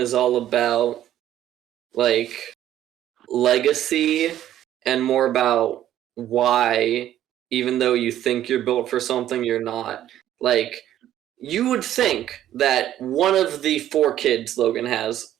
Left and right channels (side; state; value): left; quieter; 12.1 dB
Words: all about like legacy and more about why, even though you think you're built for something, you're not. Like, you would think that one of the four kids Logan has